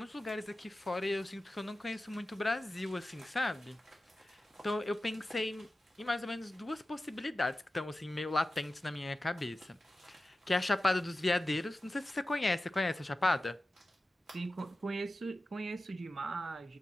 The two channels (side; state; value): both; normal; correlation 0.94